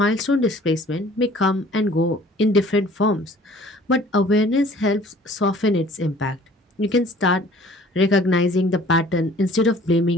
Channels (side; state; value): both; normal; correlation 0.52